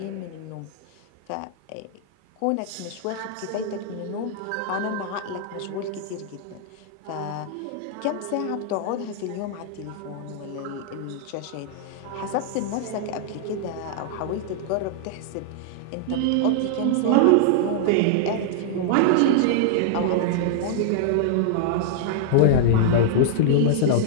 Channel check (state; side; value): different; both; correlation -0.01